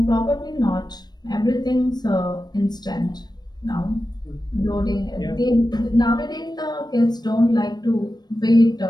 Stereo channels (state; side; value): late; right; 0.20 ms